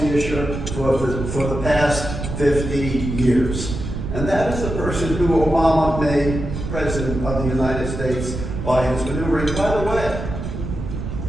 issue for the past 50 years. And that is the person who Obama made president of the United States by his maneuvering. By the way,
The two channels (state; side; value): noise; right; rumble, 5 dB below the sound